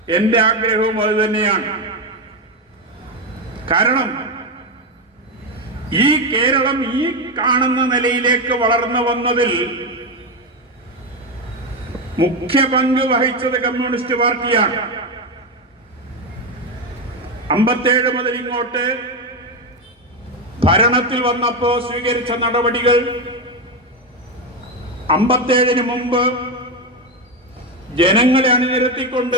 എന്റെ ആഗ്രഹവും അത് തന്നെയാണ്. കാരണം ഈ കേരളം ഈ കാണുന്ന നിലയിലേക്ക് വളർന്നു വന്നതിൽ മുഖ്യ പങ്ക് വഹിച്ചത് കമ്മ്യൂണിസ്റ്റ് പാർട്ടിയാണ്. 57 മുതൽ ഇങ്ങോട്ട് ഭരണത്തിൽ വന്നപ്പോ സ്വീകരിച്ച നടപടികൾ 57-ന് മുമ്പ് ജനങ്ങളെ അണിനിരത്തിക്കൊണ്ട്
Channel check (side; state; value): both; normal; correlation 0.11